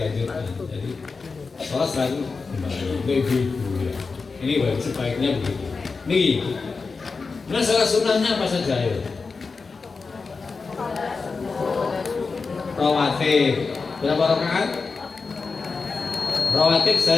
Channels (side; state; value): right; quieter; 4.5 dB